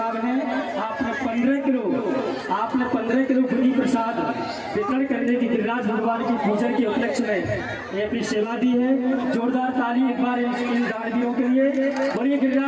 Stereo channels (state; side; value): identical; both; correlation 1.00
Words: हैं। आपने 15 किलो बुद्धि प्रसाद वितरण करने की गिरिराज भगवान की पूजन के उपलक्ष्य में ये अपनी सेवा दी है। जोरदार ताली एक बार इन दानवीरों के लिए। बोलिए